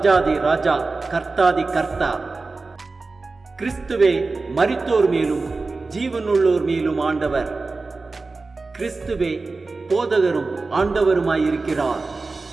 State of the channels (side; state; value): left; quieter; 3.8 dB